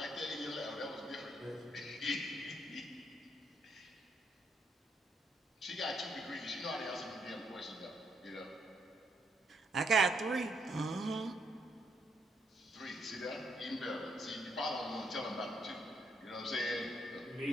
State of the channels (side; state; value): both; normal; correlation 0.74